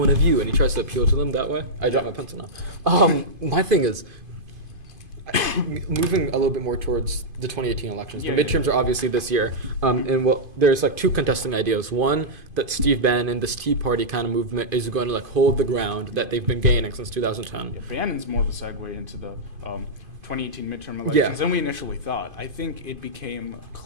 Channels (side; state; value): left; late; 2.5 ms